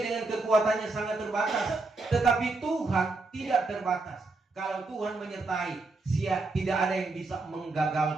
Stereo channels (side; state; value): left; quieter; 3.4 dB